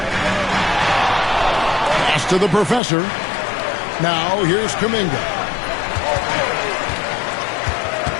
Pass to the professor. Now here's Kuminga.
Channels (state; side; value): drops out; right; at 2.8 s